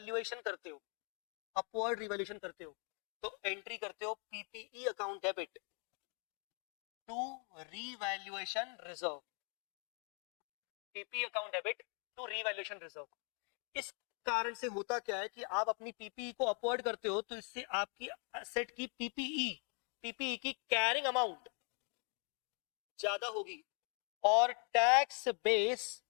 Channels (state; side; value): quieter; right; 39.1 dB